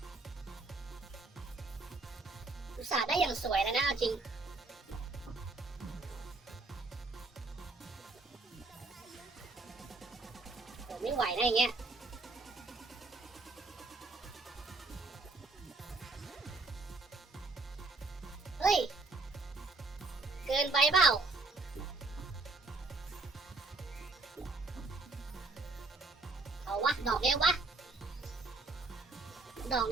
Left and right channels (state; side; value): quieter; left; 3.4 dB